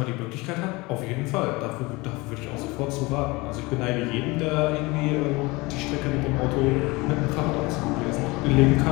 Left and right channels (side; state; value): right; quieter; 23.7 dB